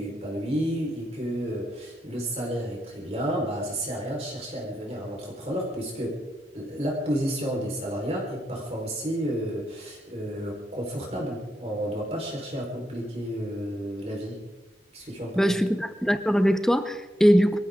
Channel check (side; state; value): both; normal; correlation 0.82